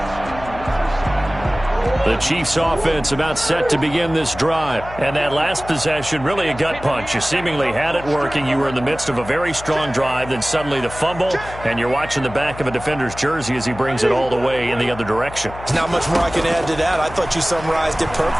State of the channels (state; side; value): noise; left; hum, 14 dB below the sound